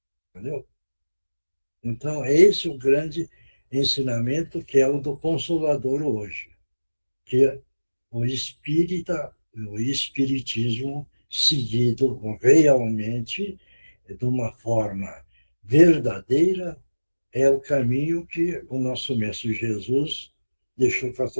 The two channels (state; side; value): inverted; both; correlation -1.00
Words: entendeu? Então, é esse o grande ensinamento que é o do Consolador hoje, que o o espiritismo seguido realmente de uma forma verdadeira é o caminho que o nosso Mestre Jesus deixou para